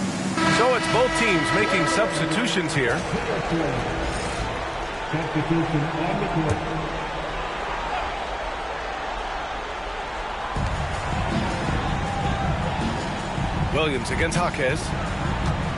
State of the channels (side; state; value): both; identical; correlation 1.00